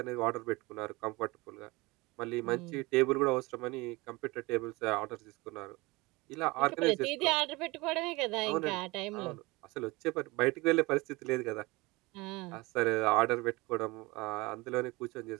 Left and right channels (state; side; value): quieter; left; 23.3 dB